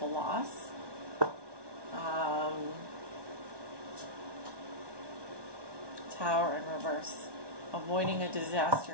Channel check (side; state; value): left; late; 1.2 ms